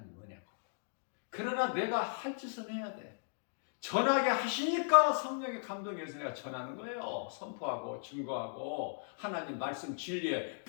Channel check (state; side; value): silent; right; digital silence